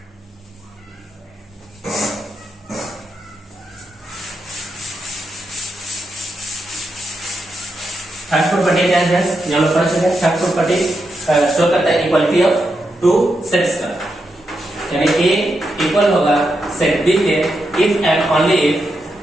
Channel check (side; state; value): both; normal; correlation 0.85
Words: थर्ड प्रॉपर्टी क्या है फ्रेंड्स, यहाँ पर पढ़ चुके हैं। थर्ड प्रॉपर्टी शो करता है इक्वालिटी ऑफ टू सेट्स का, यानी ए इक्वल होगा सेट बी के इफ एंड ओनली इफ